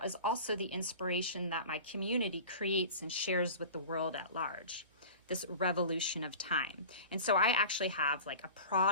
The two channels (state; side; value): inverted; both; correlation -0.37